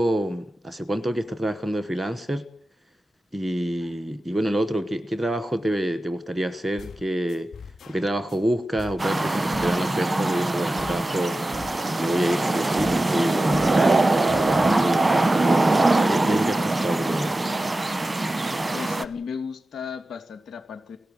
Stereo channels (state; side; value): normal; both; correlation 0.94